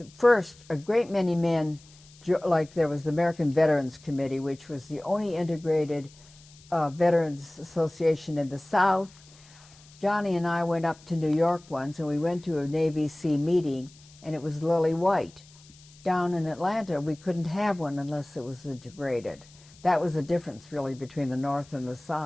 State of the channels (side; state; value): left; noise; hiss, 25 dB below the sound